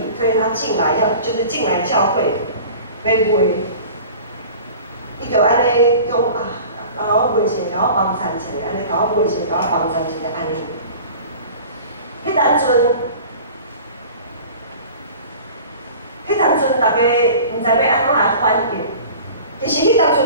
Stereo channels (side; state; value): both; inverted; correlation -0.42